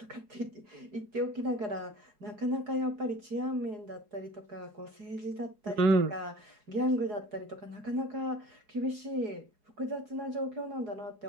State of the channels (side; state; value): left; late; 4.8 ms